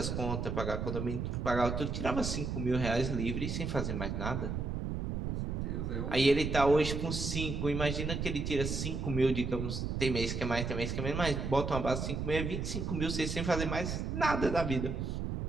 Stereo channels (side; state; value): right; noise; rumble, 2 dB below the sound